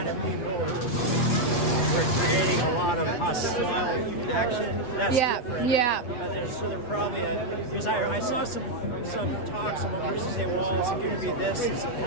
of people who were creating a lot of hostile action. That's different. Yeah. But they're probably because I saw some talks. Some person say, well, is it going to be this? Does it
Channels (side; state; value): right; late; 8.2 ms